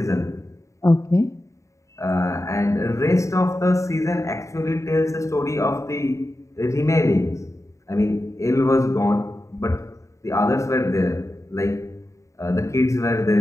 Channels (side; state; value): right; late; 0.15 ms